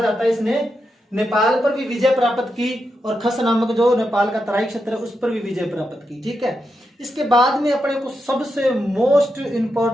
जाता है इसने नेपाल पर भी विजय प्राप्त की और खस नामक जो नेपाल का तराई क्षेत्र है उस पर भी विजय प्राप्त की। ठीक है, इसके बाद में अपने को सबसे मोस्ट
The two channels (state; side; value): normal; both; correlation 0.86